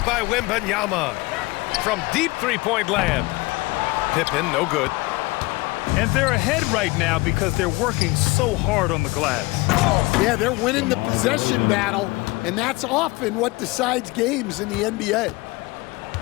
by Wembanyama. From deep three-point land. Pippen, no good. And they're ahead right now because they're working so hard on the glass. Yeah, they're winning the possession battle, and that's often what decides games in the NBA.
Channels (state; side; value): quieter; right; 22.8 dB